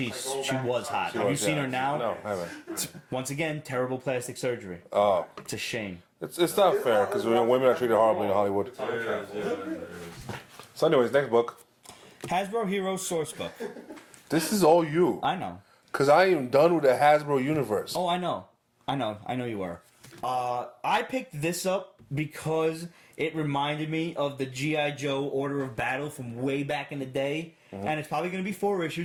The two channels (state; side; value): identical; both; correlation 1.00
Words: was hot. Have you seen her now? No, I haven't. Once again, terrible plastic surgery. Oh. It's a shame. It's not fair because women are treated horribly in Hollywood. It is. So, anyways, next book. Hasbro Heroes Sourcebook. This is all you. I know. Because I am done with the Hasbro universe. Oh, I know you were. I picked this up because it reminded me of the G.I. Joe Order of Battle from way back in the day. And it's probably going to be 4